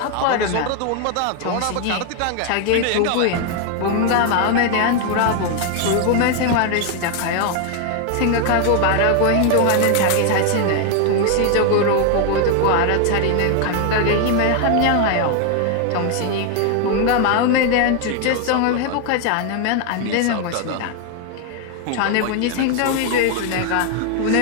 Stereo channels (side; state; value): both; different; correlation 0.00